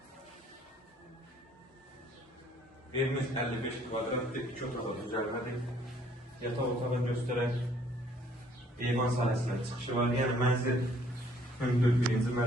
Evimiz 55 kvadratdır, 2 otağı düzəlmədir. Yataq otağı göstərək, eyvan sahəsindən çıxışı var, yəni mənzil hündür 1-ci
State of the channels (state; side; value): normal; both; correlation 0.61